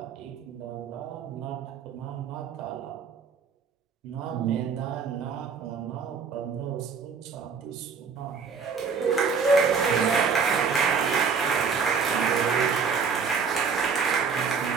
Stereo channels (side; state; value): left; quieter; 5.7 dB